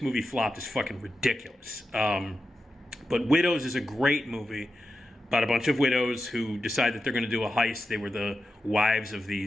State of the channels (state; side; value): normal; both; correlation 0.90